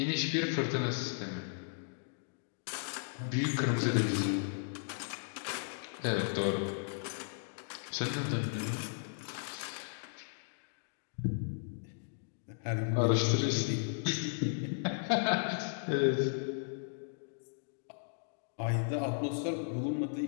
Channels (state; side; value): silent; right; digital silence